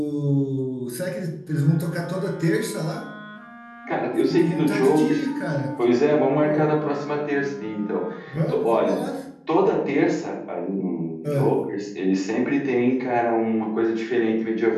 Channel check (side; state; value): both; identical; correlation 1.00